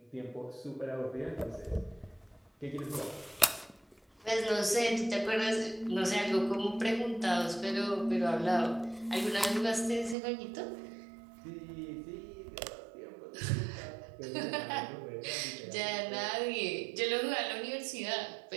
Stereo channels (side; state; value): left; drops out; at 10.2 s